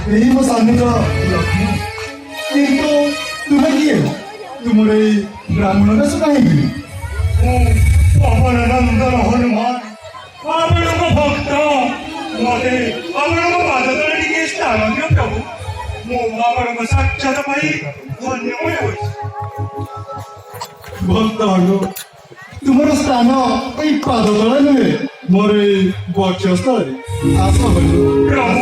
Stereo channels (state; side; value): identical; both; correlation 1.00